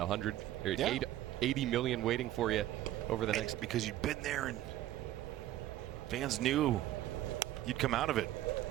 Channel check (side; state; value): left; quieter; 13.7 dB